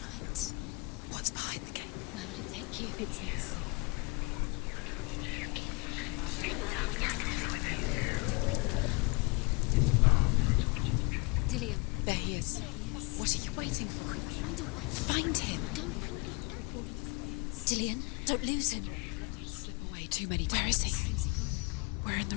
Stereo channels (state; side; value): quieter; right; 28.8 dB